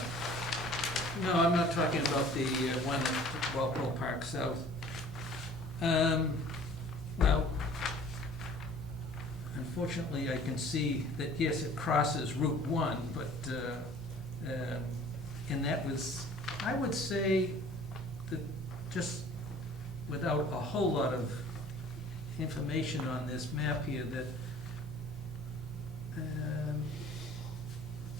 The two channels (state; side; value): normal; both; correlation 0.50